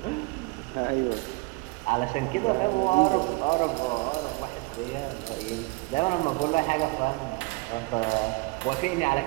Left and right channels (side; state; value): left; quieter; 26.2 dB